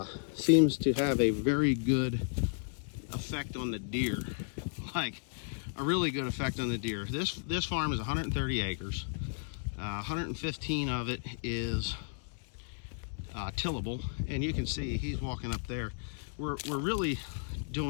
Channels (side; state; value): right; silent; digital silence